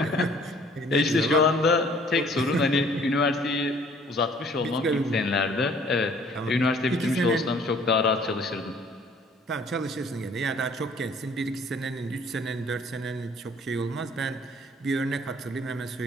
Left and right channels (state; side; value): normal; both; correlation 0.56